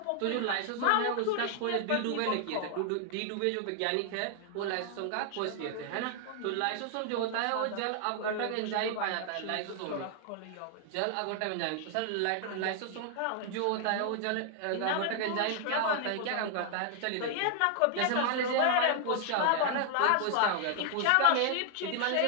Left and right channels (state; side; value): different; both; correlation 0.00